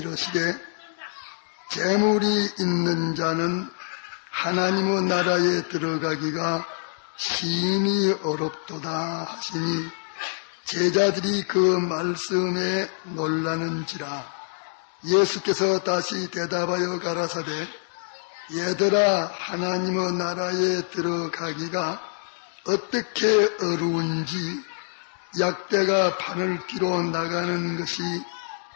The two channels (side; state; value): right; silent; digital silence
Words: 재물이 있는 자는 하나님의 나라에 들어가기가 심히 어렵도다 하시니 제자들이 그 말씀에 놀라는지라. 예수께서 다시 대답하여 가라사대 얘들아, 하나님의 나라에 들어가기가 어떻게 어려운지 약대가 바늘 끼로 나가는 것이